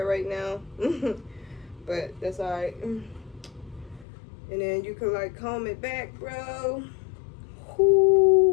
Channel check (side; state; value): right; drops out; at 4.0 s